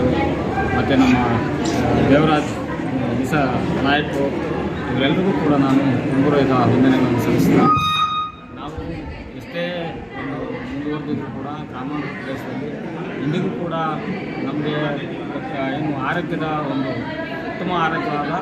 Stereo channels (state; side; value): identical; both; correlation 1.00